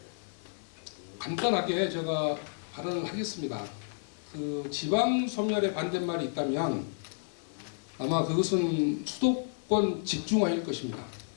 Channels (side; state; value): right; silent; digital silence